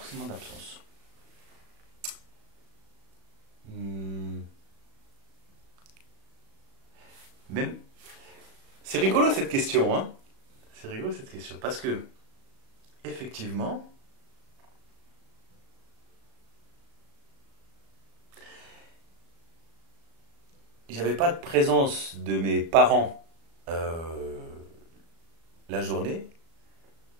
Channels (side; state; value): left; late; 36 ms